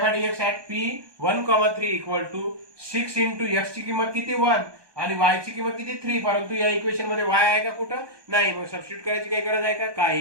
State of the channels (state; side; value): late; left; 1.2 ms